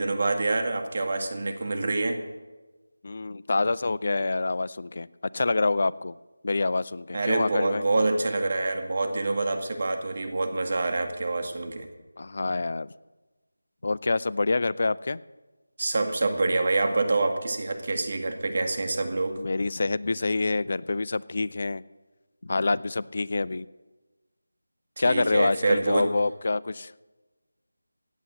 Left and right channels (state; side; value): inverted; both; correlation -0.94